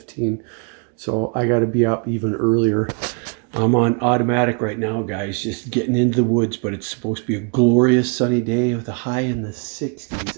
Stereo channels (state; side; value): quieter; left; 38.9 dB